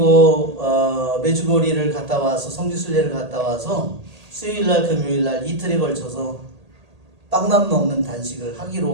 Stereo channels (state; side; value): late; left; 1.8 ms